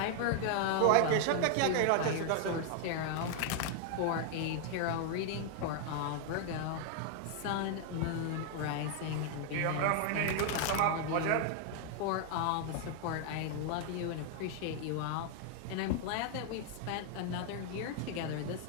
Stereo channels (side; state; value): both; different; correlation 0.00